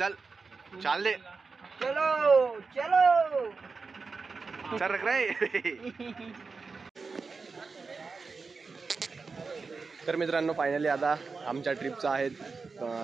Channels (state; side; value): quieter; left; 4.5 dB